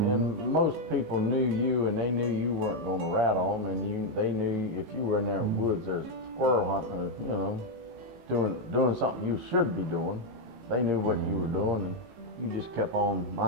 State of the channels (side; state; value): left; late; 19 ms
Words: most people knew you, and they knew you weren't going to rattle them, and they knew if you were in there in the woods, there's squirrel hunting, or, you know, doing something you should be doing. They knew what you were doing, and you just kept on